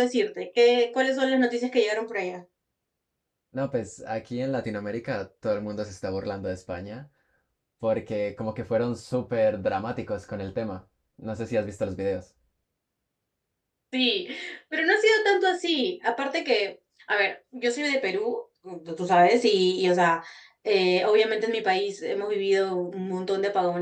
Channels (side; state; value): both; identical; correlation 1.00